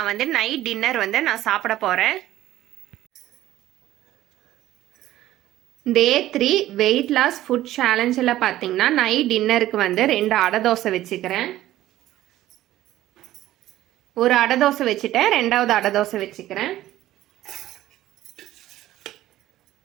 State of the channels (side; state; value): left; quieter; 14.5 dB